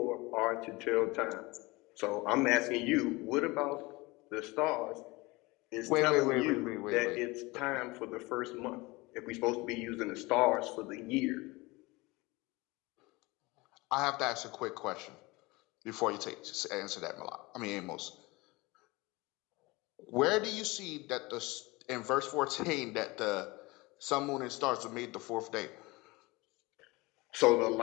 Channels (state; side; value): quieter; right; 23.1 dB